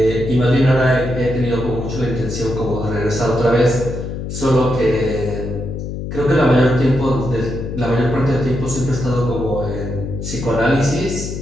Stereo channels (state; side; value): noise; left; hum, 6 dB below the sound